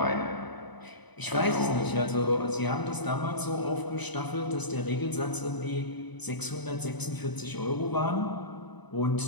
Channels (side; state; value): right; late; 1.0 ms